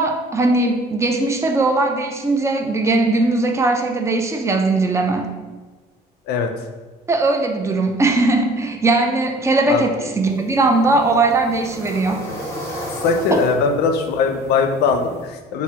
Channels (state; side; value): normal; both; correlation 0.49